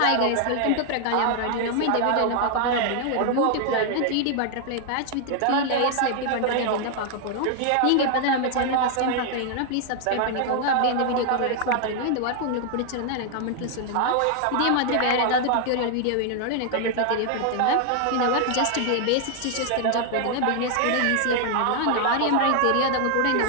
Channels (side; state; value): both; different; correlation 0.00